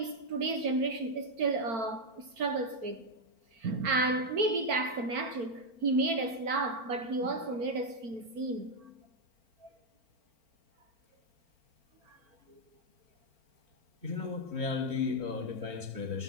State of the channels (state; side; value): late; left; 4.4 ms